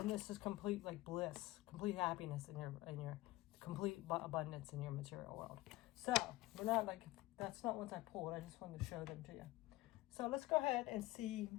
this is complete bliss, complete happiness in your complete abundance in your material world. So we're not that's not ones I pulled. I just wanted to show them to you. So let's go ahead and see,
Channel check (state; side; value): quieter; right; 18.4 dB